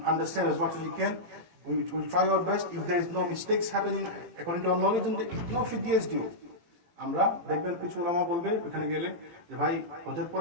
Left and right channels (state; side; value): late; left; 18 ms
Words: understand, as much as we can, we will try our best. If there is no mistakes happening according to our knowledge, then no fidyah is due. আমরা দেখবেন কিছু ওলামা বলবে ওখানে গেলে যে ভাই হজের